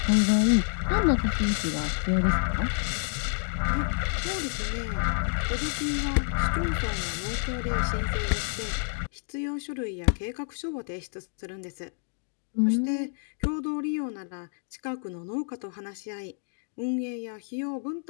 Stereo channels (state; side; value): silent; right; 57 dB below the other